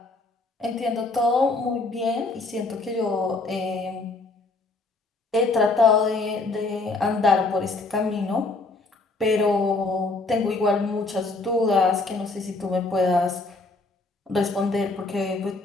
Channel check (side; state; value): right; quieter; 3.4 dB